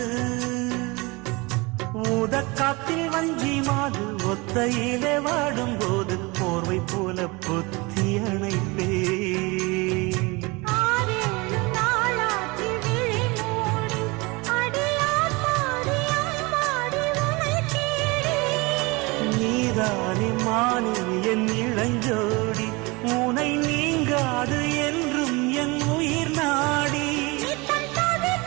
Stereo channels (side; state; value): left; quieter; 25.6 dB